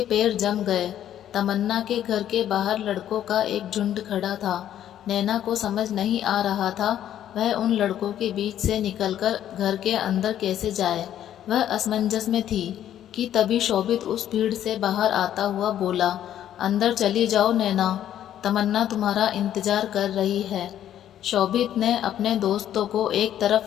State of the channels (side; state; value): right; quieter; 11.1 dB